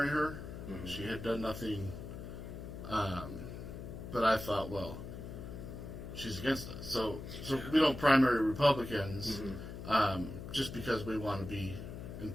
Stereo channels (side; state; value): left; noise; hum, 9 dB below the sound